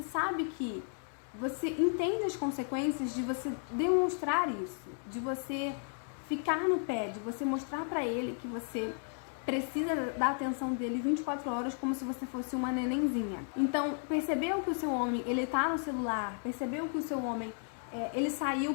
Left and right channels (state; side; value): silent; right; 55 dB below the other